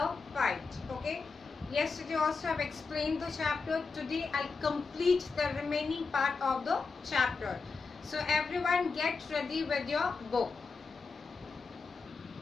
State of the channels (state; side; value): quieter; right; 4.6 dB